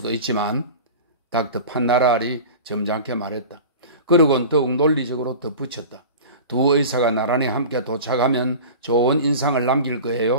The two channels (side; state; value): both; inverted; correlation -0.35